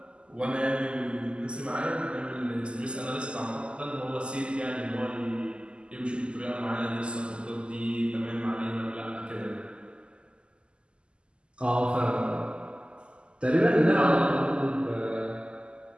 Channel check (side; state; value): left; late; 0.051 ms